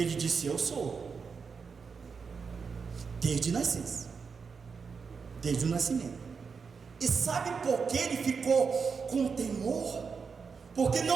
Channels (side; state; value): left; quieter; 5.5 dB